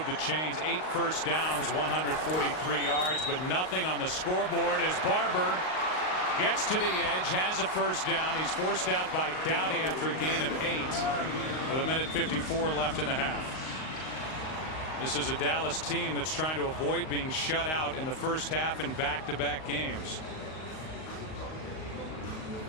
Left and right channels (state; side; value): late; right; 38 ms